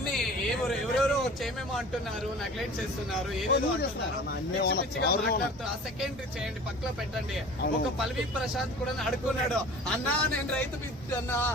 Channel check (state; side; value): normal; both; correlation 0.42